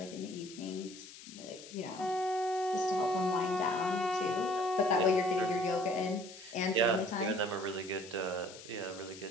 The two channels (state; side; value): noise; left; hiss, 16 dB below the sound